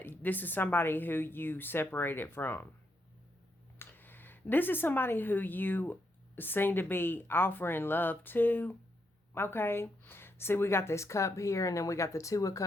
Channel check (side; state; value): both; normal; correlation 0.80